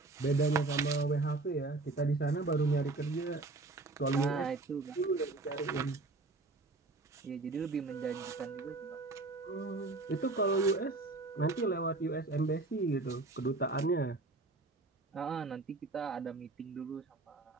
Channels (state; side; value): quieter; left; 3.4 dB